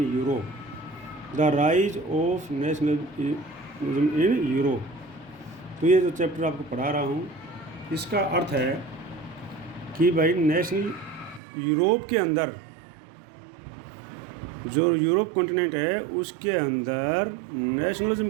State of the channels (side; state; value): left; drops out; at 11.4 s